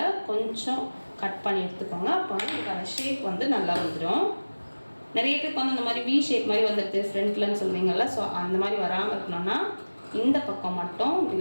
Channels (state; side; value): inverted; both; correlation -1.00